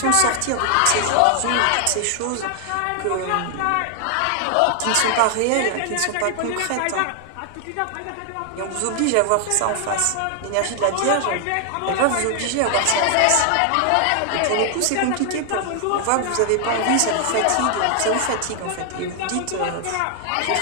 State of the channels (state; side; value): different; both; correlation 0.00